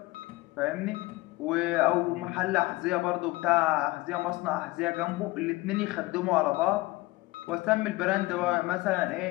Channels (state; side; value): quieter; right; 20.6 dB